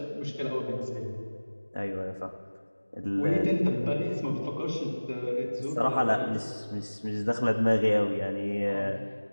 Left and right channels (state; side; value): inverted; both; correlation -1.00